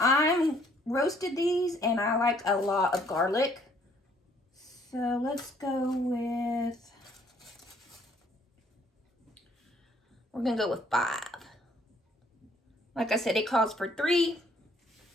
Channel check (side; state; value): both; normal; correlation 0.63